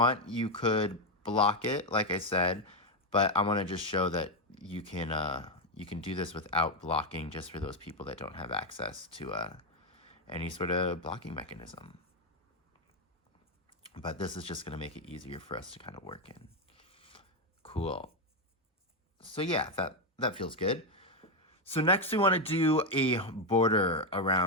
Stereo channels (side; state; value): both; normal; correlation 0.05